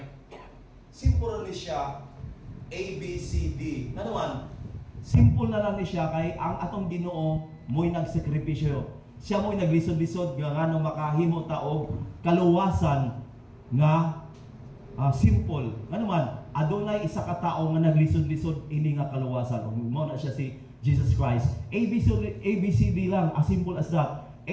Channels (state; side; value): identical; both; correlation 1.00